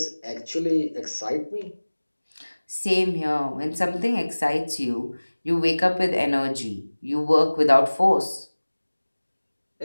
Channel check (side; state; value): both; inverted; correlation -1.00